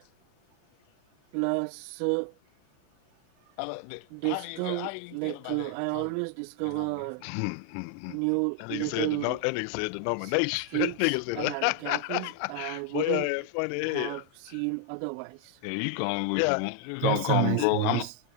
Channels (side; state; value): both; different; correlation 0.00